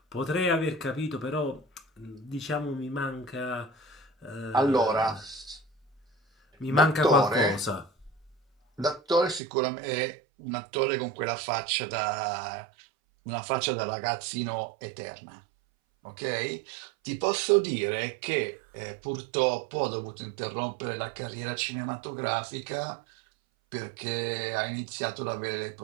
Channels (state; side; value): drops out; left; at 9.4 s